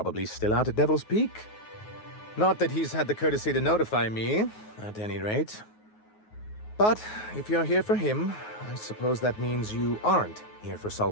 still out at Devil's Peak. Not that he's had the courtesy to notify me, at any rate. But if you're here for him, I suppose that means you aren't here for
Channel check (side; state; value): right; late; 9.4 ms